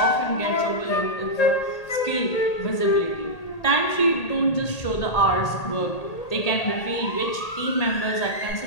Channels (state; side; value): late; right; 1.8 ms